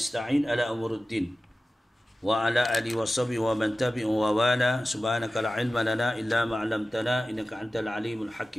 على أمور الدين وعلى آله وصحبه ومن تبعه ووالاه سبحانك لا علم لنا إلا ما علمتنا إنك أنت العليم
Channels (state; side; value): normal; both; correlation 0.95